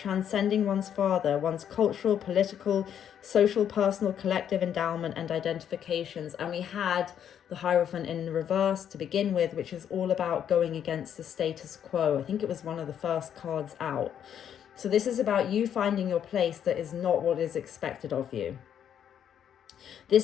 one's father, one's cultural, political, social, personal, collective endowment and identifications. And we had the Hierophant in reverse to begin with, which is all about going against the status quo. I think it was one of the first cards out. So this is about you finding your place that is not what is expected of you.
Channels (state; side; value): quieter; right; 9.2 dB